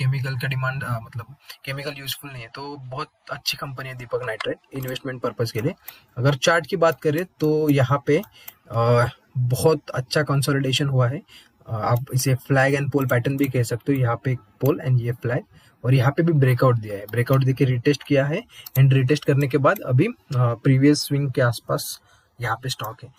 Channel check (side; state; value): both; identical; correlation 1.00